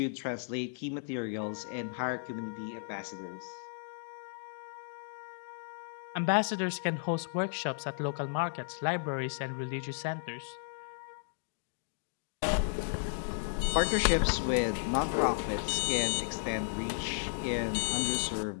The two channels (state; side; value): silent; right; digital silence